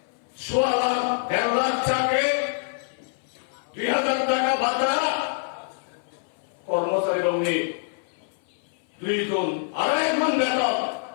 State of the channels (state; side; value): silent; right; 59 dB below the other